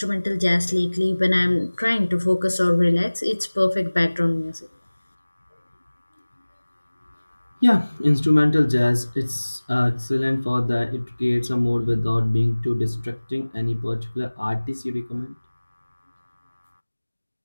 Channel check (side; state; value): both; inverted; correlation -1.00